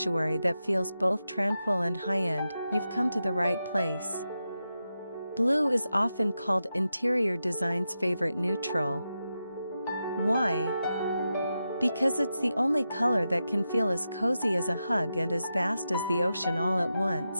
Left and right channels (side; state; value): both; inverted; correlation -0.89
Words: that feels both tranquil and high-end, you've come to the right place. Blue is often called interior design's favorite neutral. Why? Because it's the only color that can feel as cozy as a hug and as vast as the ocean all at